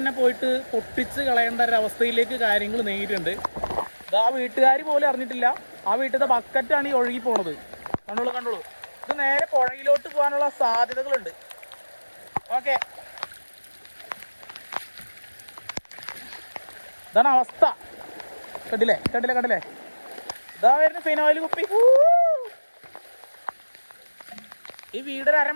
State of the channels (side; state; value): both; inverted; correlation -1.00